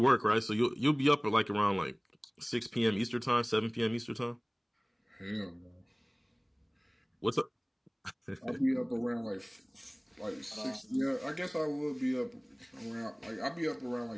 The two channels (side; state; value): both; identical; correlation 1.00